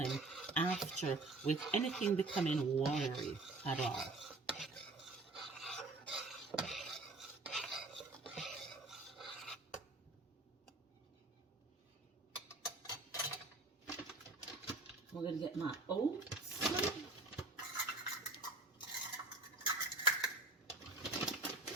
after with anything becoming watery at all. We're going to get my oats.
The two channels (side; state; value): left; quieter; 3.2 dB